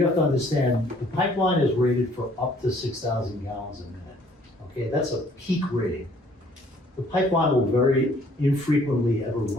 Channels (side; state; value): both; normal; correlation 0.60